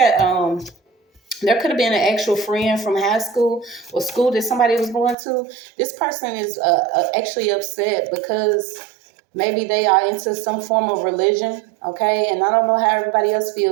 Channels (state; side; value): drops out; left; at 5.2 s